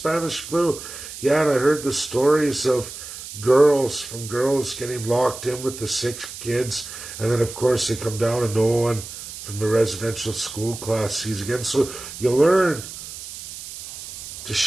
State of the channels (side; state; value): right; noise; hiss, 11 dB below the sound